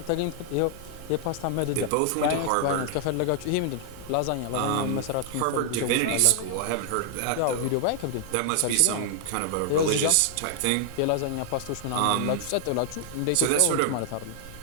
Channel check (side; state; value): both; different; correlation 0.00